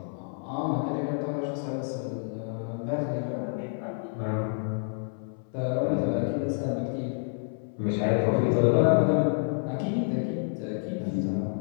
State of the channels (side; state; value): right; silent; 59 dB below the other